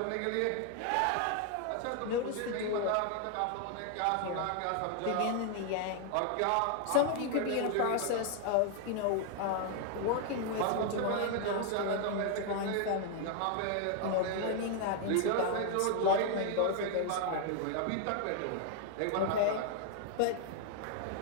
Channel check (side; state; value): both; different; correlation 0.00